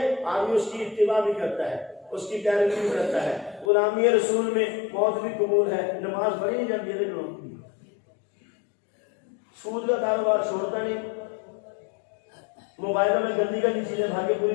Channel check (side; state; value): right; drops out; at 3.7 s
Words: آدمی اس کی اتباع بھی کرتا ہے، اس کی پیروی بھی کرتا ہے۔ غلامی رسول میں موت بھی قبول ہے، نماز پڑھی نہیں جاتی ہے، سود کا کاروبار چھوڑتا نہیں، موبائلوں میں گندی گندی چیزیں بھاگے پوری